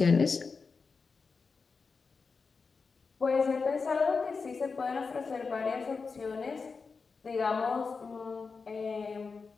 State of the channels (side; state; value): right; quieter; 4.8 dB